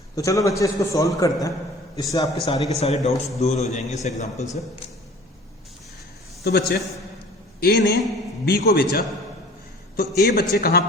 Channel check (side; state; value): both; normal; correlation 0.46